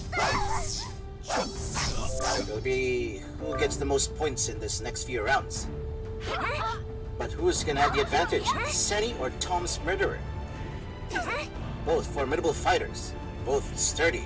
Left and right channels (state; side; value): identical; both; correlation 1.00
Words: It'll be who gets the most points in this next few rounds. But who's gonna have the advantage? Seni or Tom's Murderer? Both formidable fighters, both sturdy